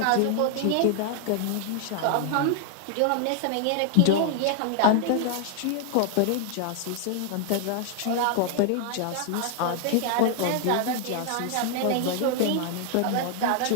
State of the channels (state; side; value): different; both; correlation 0.00